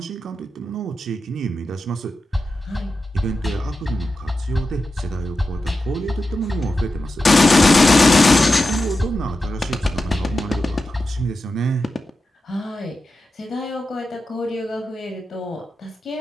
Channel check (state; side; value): normal; both; correlation 0.91